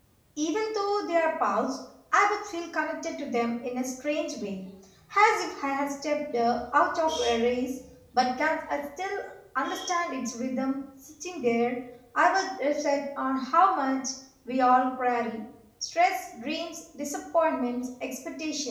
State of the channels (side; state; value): both; identical; correlation 1.00